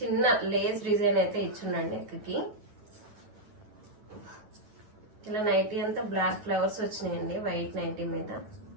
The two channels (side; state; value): left; late; 9.8 ms